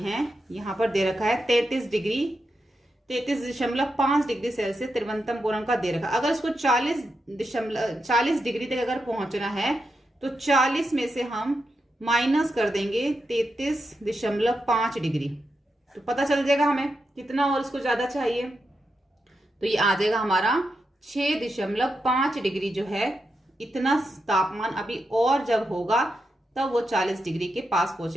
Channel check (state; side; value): normal; both; correlation 0.86